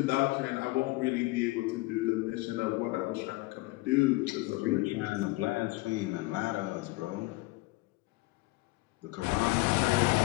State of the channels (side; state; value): right; quieter; 21.8 dB